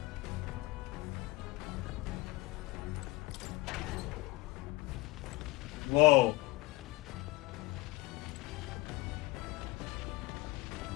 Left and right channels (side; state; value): right; quieter; 21.0 dB